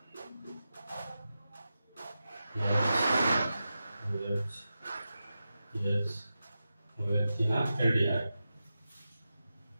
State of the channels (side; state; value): both; inverted; correlation -0.92